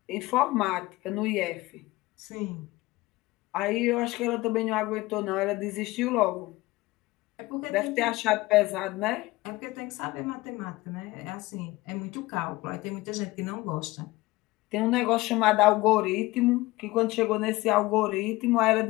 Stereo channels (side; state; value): right; quieter; 19.9 dB